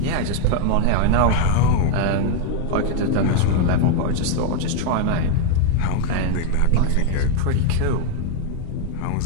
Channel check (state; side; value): different; both; correlation 0.00